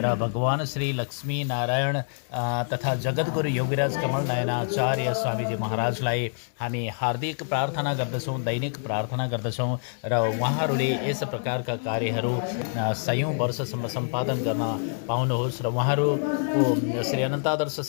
र भगवान श्री लक्ष्मी नारायण तथा जगद्गुरु योगीराज कमल नयनाचार्य स्वामीजी महाराजलाई हामी हार्दिक प्रार्थना गर्दछौँ, दैनिक प्रार्थना गर्दछौँ र उहाँहरूले यस प्रकारका कार्यहरू सयौँ वर्षसम्म सम्पादन गर्न पाउनुहोस् र उहाँहरूको श्री अनन्तादर्श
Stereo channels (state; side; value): silent; right; 61 dB below the other